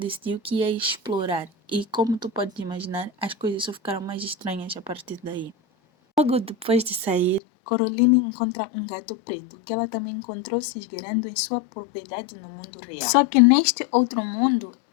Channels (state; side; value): drops out; right; at 7.4 s